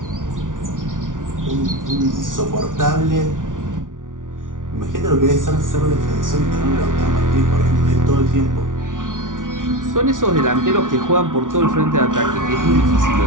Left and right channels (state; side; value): late; left; 0.88 ms